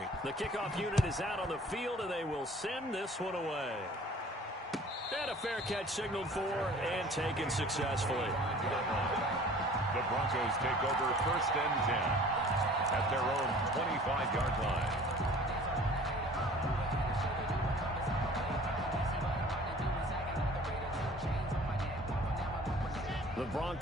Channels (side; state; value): both; normal; correlation 0.48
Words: The kickoff unit is out on the field, and they will send this one away. And a fair catch signaled for and taken successfully. The Broncos take over 1st and 10 at their own 25-yard line. The